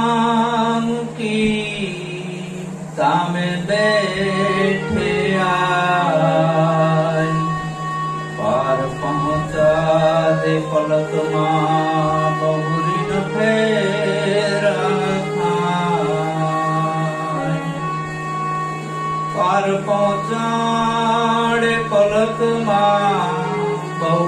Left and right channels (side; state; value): both; identical; correlation 1.00